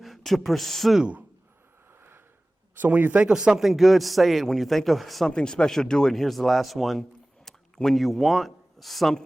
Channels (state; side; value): normal; both; correlation 0.98